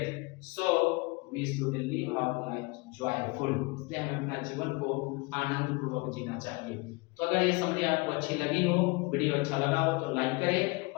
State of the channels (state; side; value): quieter; right; 26.8 dB